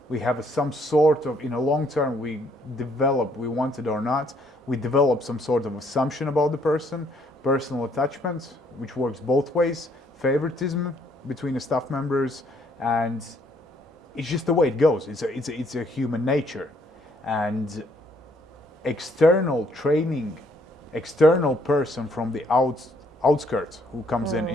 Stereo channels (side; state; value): both; normal; correlation 0.67